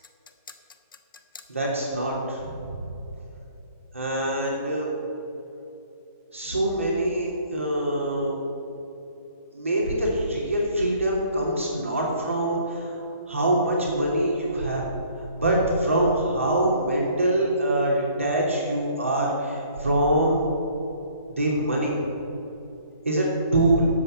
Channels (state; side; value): inverted; both; correlation -0.58